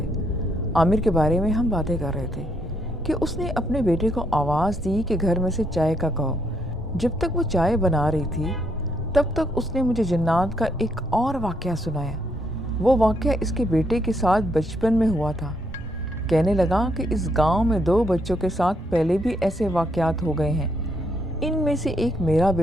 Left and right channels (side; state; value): both; normal; correlation 0.74